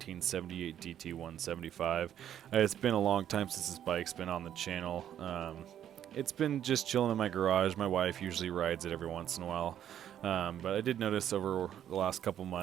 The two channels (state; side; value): quieter; left; 10.4 dB